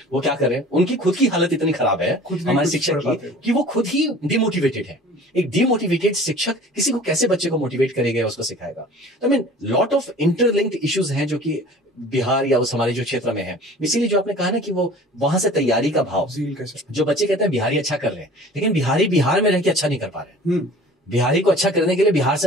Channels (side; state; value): both; normal; correlation 0.45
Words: वो क्या कर रहे हैं, उनकी खुद की हालत इतनी खराब है हमारे शिक्षक की कि वो खुद ही डिमोटिवेटेड है। एक डिमोटिवेटेड शिक्षक किसी को कैसे बच्चे को मोटिवेट करेगा, उसको सिखाएगा। तो I mean lot of interlinked issues हैं जो कि बिहार या उस हमारे जो क्षेत्र में है। इसीलिए जो आपने कहा ना कि वो वहां से तैयारी का भाव, जो बच्चे कहते हैं बिहारी अच्छा कर रहे हैं, लेकिन बिहारी बिहार में रह के अच्छा नहीं कर पा रहे। बिहारी को अच्छा करने के लिए बिहार